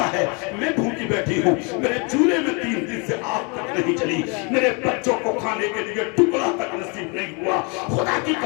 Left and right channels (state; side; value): quieter; right; 32.9 dB